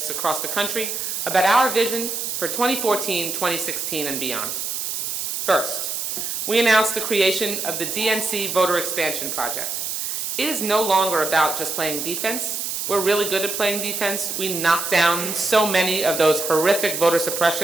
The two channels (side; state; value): right; noise; hiss, 3 dB below the sound